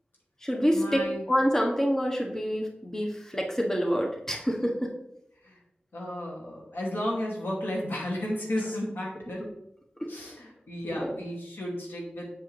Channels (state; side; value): normal; both; correlation 0.95